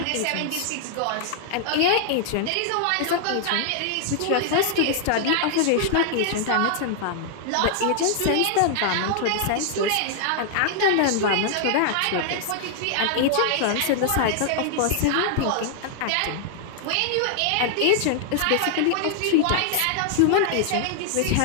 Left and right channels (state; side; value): different; both; correlation 0.00